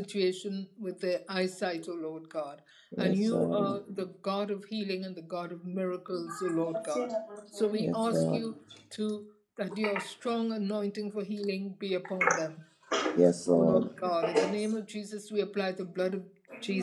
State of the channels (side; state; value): both; identical; correlation 1.00